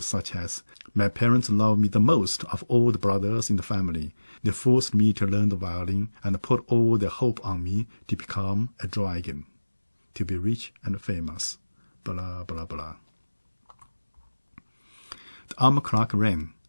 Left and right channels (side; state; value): both; inverted; correlation -1.00